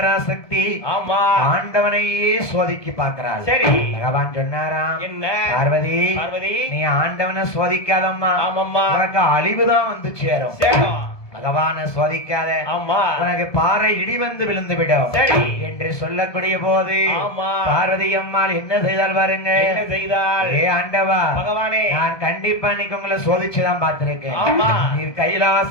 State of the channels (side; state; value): right; late; 1.7 ms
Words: ஆமா. ஆண்டவனையே சோதிக்கி பார்க்கிறாள். சரி. பகவான் சொன்னாராம். என்ன? பார்வதி. பார்வதி. நீ ஆண்டவனை சோதிக்காதம்மா. ஆமாம்மா. உனக்கு அழிவுதான் வந்து சேரும். சேரும். பகவான சோதிக்காத. ஆமா. உனக்கு பாறை இடி வந்து விழுந்து விடும். சரி. என்று சொல்லக்கூடிய போது ஆமா. பார்வதி அம்மாள் என்ன செய்தால் பாருங்க. என்ன செய்தால்? ஏ ஆண்டவா பகவானே. நான் கண்டிப்பா இன்னைக்கு உங்களை சோதிச்சுதான் பார்த்திருக்கேன். ஆமா. நீர்